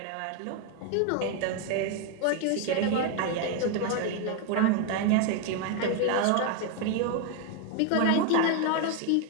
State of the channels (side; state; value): both; different; correlation 0.01